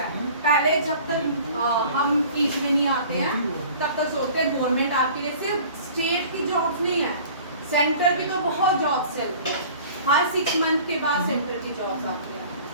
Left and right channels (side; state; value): both; inverted; correlation -0.47